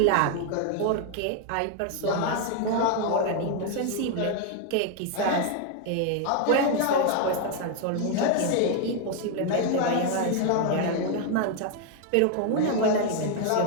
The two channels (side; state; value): both; different; correlation 0.00